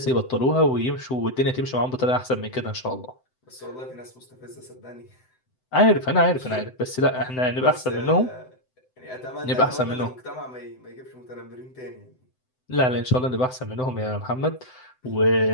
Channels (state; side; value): late; right; 7.8 ms